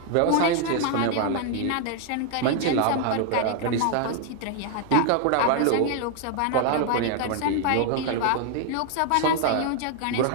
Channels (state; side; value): different; both; correlation 0.00